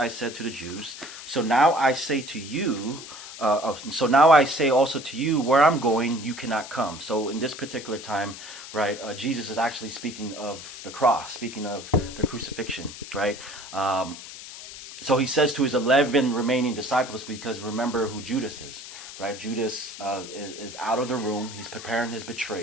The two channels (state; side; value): noise; left; hiss, 13 dB below the sound